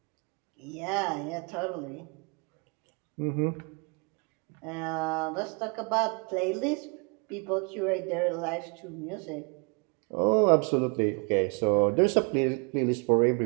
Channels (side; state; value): left; quieter; 33.9 dB